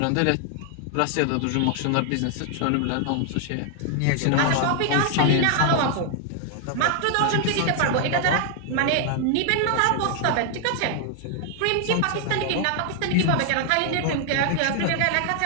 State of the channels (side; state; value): both; different; correlation 0.00